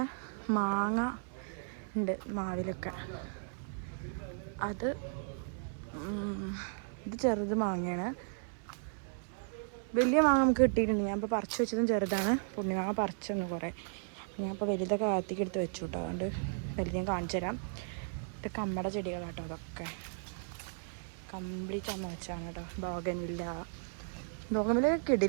മാങ്ങ ഉണ്ട് മാവിലൊക്കെ. ഇത് ചെറുത് മാങ്ങയാണ്. വലിയ മാങ്ങ നമുക്ക് കിട്ടിയിട്ടുണ്ട്. ഞാൻ ഇപ്പോൾ പറിച്ച് വെച്ചതും ചെറുതാണ്. പുണ്യമാങ്ങ പറിച്ചൊന്ന് കുറേ. ഞാൻ ഇപ്പോൾ വലുതൊക്കെ കാത്തിക്ക് എടുത്ത് വെച്ചു കേട്ടോ. അതുകൊണ്ട് വലുത് ഞാൻ കാണിച്ചു തരാം. ഇത് കമ്മട ചെടികളാട്ടോ. അതൊക്കെ കംപ്ലീറ്റ് അമ്മ വെച്ചാണ് കേട്ടോ. ബോഗൻവില്ല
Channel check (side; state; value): left; silent; 54 dB below the other